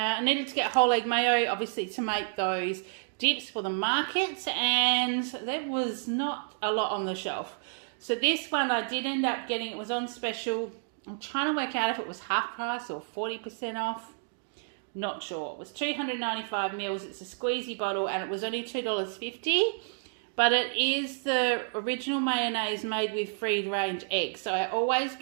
needed to get whole egg mayo, obviously, to make those dips for the markets, and there was not a lot on the shelf. So this one I did end up getting, it was on special. I'm trying to work out if it was half price or 40% off. Not sure. It was 295 mils. It's a squeezy bottle and it was only $2.50. But it is the original mayonnaise made with free range eggs. So I always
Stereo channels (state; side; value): silent; left; digital silence